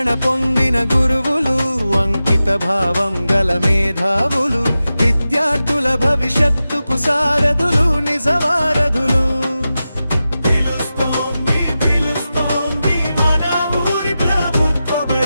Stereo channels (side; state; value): both; inverted; correlation -0.93